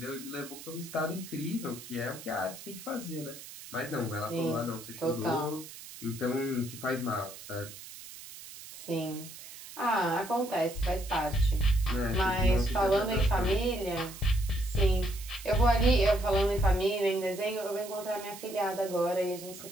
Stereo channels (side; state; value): right; noise; hiss, 14 dB below the sound